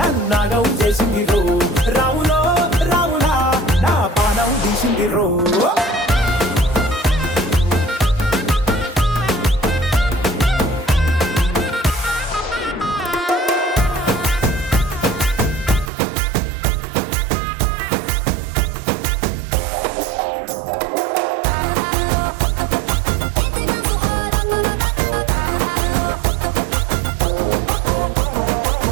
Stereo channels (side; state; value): left; drops out; at 15.9 s